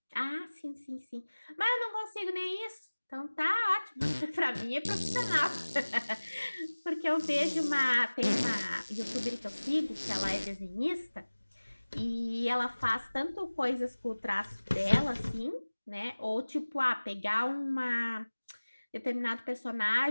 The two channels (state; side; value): inverted; both; correlation -1.00